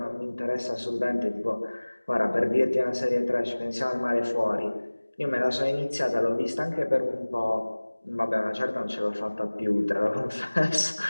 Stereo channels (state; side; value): inverted; both; correlation -1.00